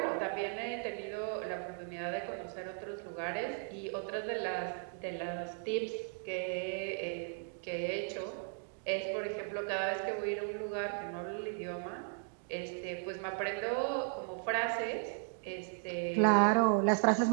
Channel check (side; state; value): left; silent; 54 dB below the other